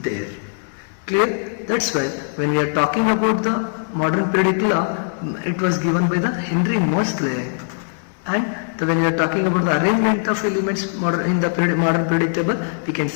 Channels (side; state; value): right; silent; digital silence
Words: Clear? That's why when we are talking about the modern periodic law, it was given by the Henry Moseley. And when we are talking about the arrangement of elements in the modern periodic table, we can